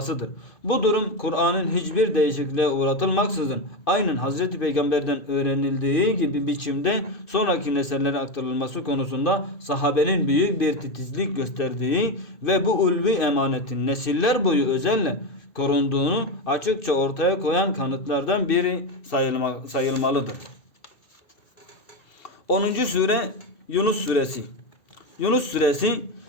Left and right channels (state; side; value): late; right; 2.2 ms